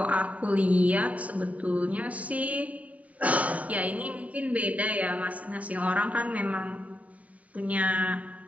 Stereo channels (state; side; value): late; left; 0.069 ms